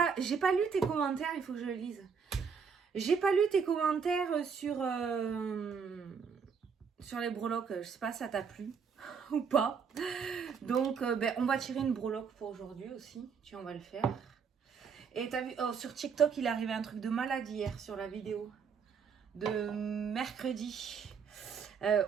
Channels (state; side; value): quieter; left; 6.2 dB